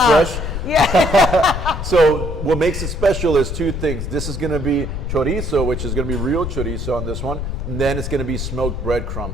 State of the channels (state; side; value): noise; left; rumble, 4 dB below the sound